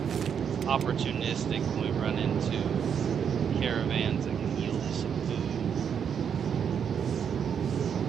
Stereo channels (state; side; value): quieter; left; 7.6 dB